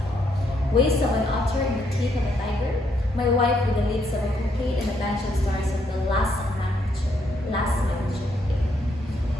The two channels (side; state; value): both; normal; correlation 0.74